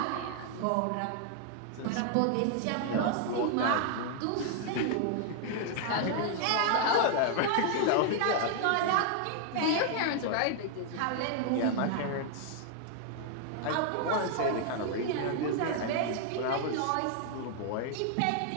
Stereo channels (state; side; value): different; both; correlation 0.00